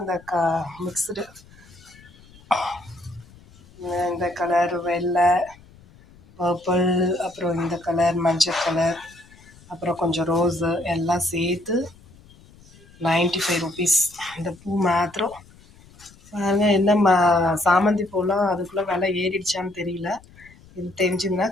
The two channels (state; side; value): noise; left; rumble, 25 dB below the sound